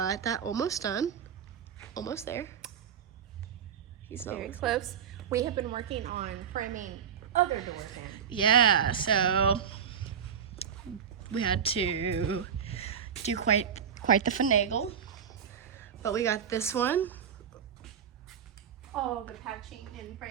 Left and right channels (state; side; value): quieter; left; 7.8 dB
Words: that almost done. Almost there. He's not. Very close. We have been working on framing other doors in. Yeah. So we had to do quite the finagle, but we got this one. All the patching and